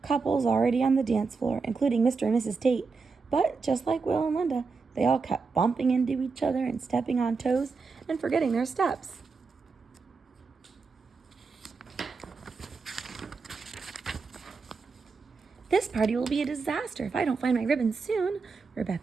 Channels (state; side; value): quieter; left; 4.6 dB